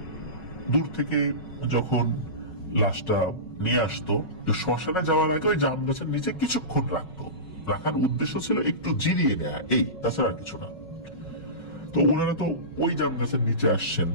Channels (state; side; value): late; right; 5.4 ms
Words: দূর থেকে যখন লাশটা নিয়ে আসতো, শ্মশানে যাওয়ার আগে ওই জাম গাছের নিচে কিছুক্ষণ রাখার উদ্দেশ্য ছিল একটু জিরিয়ে নেয়া, এই, তাছাড়া আর কিছু না। তো ওনারা তো ওই জাম গাছের নিচে আসছেন।